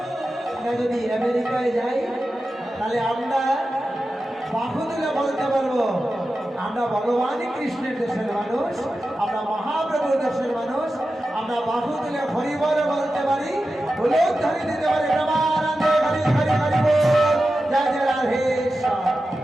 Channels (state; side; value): normal; both; correlation 0.92